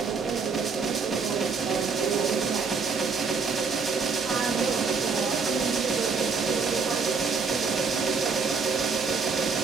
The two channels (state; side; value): quieter; left; 5.1 dB